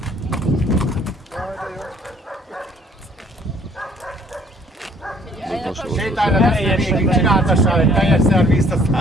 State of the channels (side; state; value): both; normal; correlation 0.60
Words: Sétálj le, végig csináltassál egy teljes szervizt,